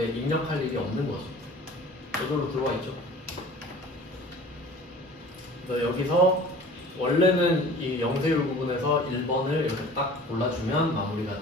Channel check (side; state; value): both; normal; correlation 0.44